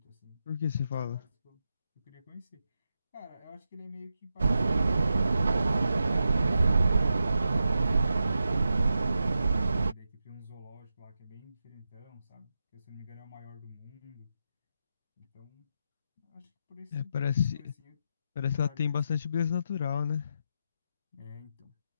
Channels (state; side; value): inverted; both; correlation -0.87